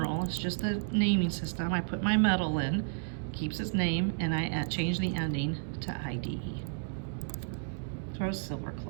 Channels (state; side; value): silent; left; digital silence